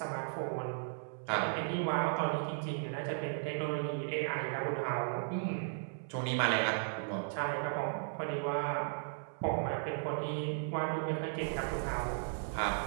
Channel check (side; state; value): left; silent; 54 dB below the other